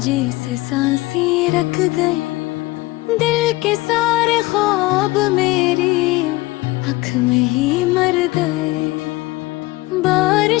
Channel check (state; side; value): quieter; right; 20.3 dB